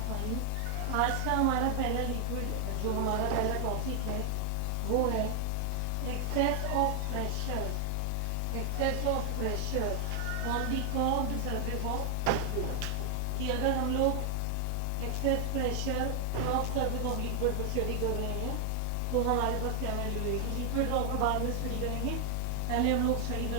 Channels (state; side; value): different; both; correlation 0.00